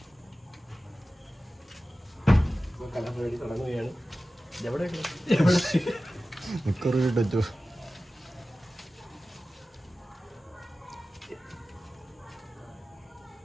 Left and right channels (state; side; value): normal; both; correlation 0.95